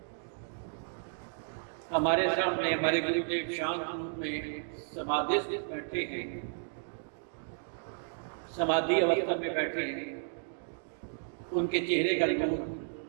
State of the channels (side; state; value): left; silent; digital silence